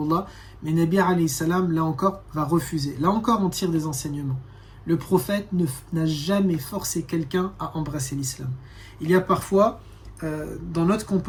Mais Nabi alayhi salam, là encore, va refuser. Là encore, on tire des enseignements. Le prophète n'a jamais forcé quelqu'un à embrasser l'islam. Il y a parfois, dans notre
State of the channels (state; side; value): identical; both; correlation 1.00